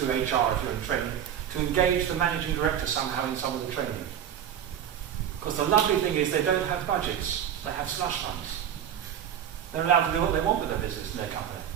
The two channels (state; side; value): quieter; left; 9.4 dB